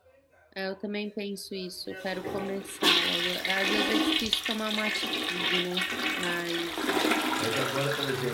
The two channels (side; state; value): both; identical; correlation 1.00